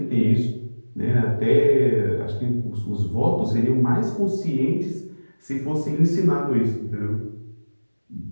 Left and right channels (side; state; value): both; inverted; correlation -1.00